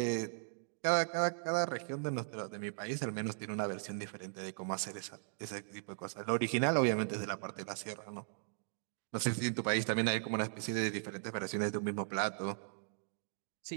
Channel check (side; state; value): left; silent; digital silence